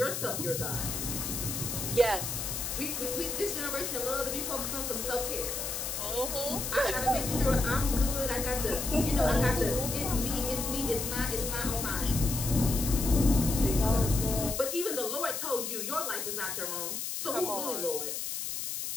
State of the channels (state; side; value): noise; left; hiss, 3 dB below the sound